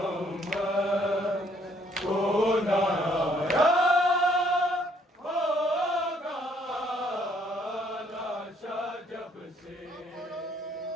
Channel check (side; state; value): both; normal; correlation 0.66